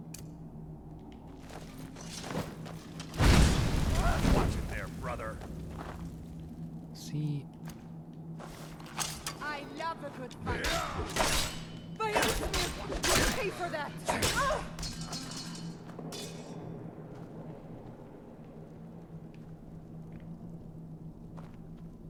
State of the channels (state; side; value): identical; both; correlation 1.00